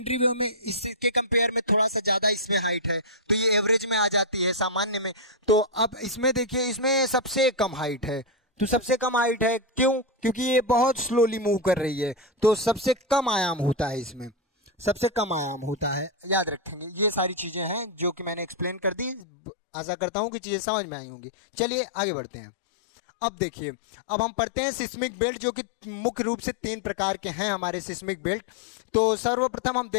वेव में इसके कंपेयर में थोड़ा सा ज्यादा इसमें हाइट है, तो ये एवरेज में आ जाती है, सामान्य में। तो अब इसमें देखिए, इसमें सबसे कम हाइट है। तो सबसे कम हाइट है क्यों? क्योंकि ये बहुत स्लोली मूव कर रही है, तो सबसे कम आयाम होता है, इसमें सबसे कम आयाम होता है। याद रखेंगे, ये सारी चीजें हैं जो कि मैंने एक्सप्लेन कर दी। आशा करता हूं कि चीजें समझ में आई होंगी। चलिए आगे बढ़ते हैं। अब देखिए, अब हम पढ़ते हैं सिस्मिक बेल्ट, जो कि मुख्य रूप से 3 प्रकार के हैं हमारे सिस्मिक बेल्ट। तो सर्वप्रथम हम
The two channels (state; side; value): drops out; right; at 19.2 s